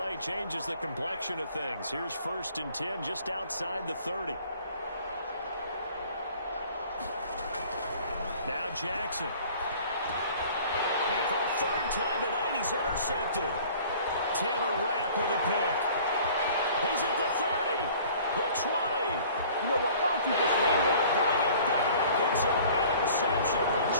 changes the complexion of things. Here's first and 10 just outside the 30. Now Jackson. And for a third time tonight, he's intercepted. Taylor Rapp with a pick. He's at the 30, the 20. You know what? Why don't you just Bring it back. It's an interception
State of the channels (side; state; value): both; inverted; correlation -0.50